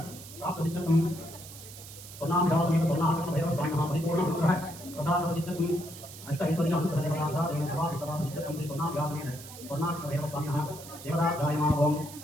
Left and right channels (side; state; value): right; noise; hiss, 15 dB below the sound